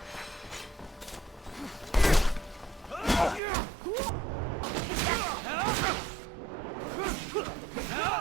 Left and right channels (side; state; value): left; drops out; at 3.4 s